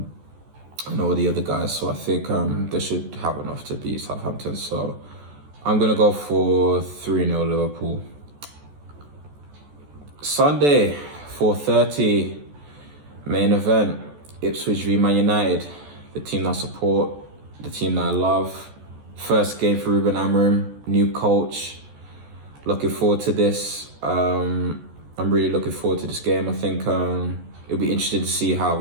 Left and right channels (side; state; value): left; late; 14 ms